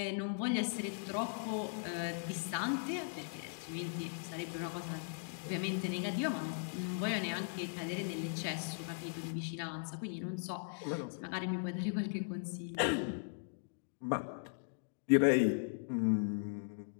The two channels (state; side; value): silent; right; digital silence